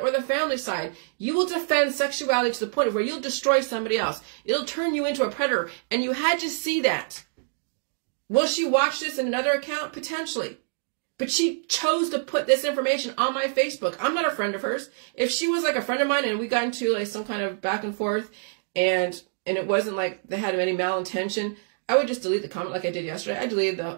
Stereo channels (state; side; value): silent; left; digital silence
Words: or the family side. You will defend sexuality to the point where you'll destroy somebody else. It'll turn you into a predator, and you had to see that. Will she watch this in another account? Potentially. But she chose to put this information on my Facebook. I'm not a friend of hers. If she was like a friend of mine and we got into like some kind of back and forth and it wasn't like they had any malintention, I would just delete the comment like I did yesterday. I deleted